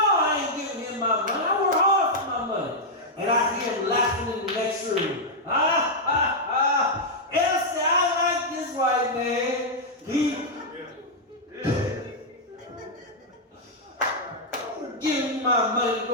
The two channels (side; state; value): both; normal; correlation -0.04